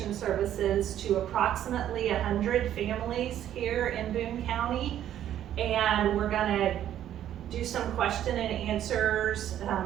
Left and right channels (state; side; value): quieter; left; 11.2 dB